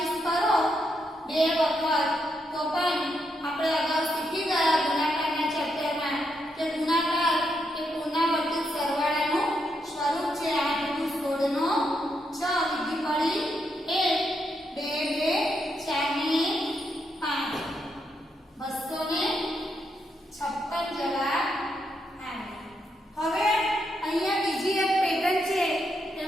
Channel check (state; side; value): normal; both; correlation 0.80